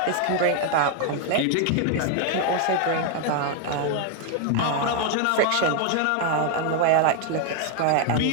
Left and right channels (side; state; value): both; different; correlation 0.00